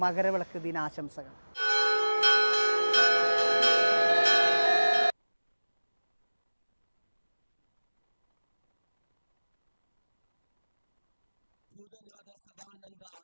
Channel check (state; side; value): inverted; both; correlation -1.00